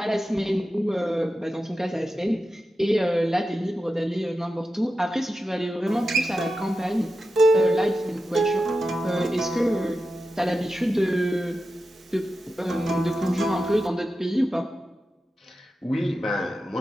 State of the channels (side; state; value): both; normal; correlation 0.91